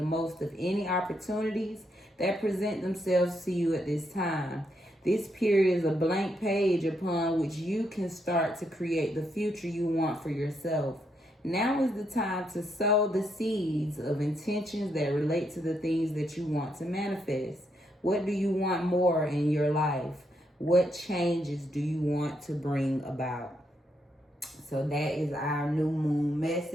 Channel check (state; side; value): normal; both; correlation 0.78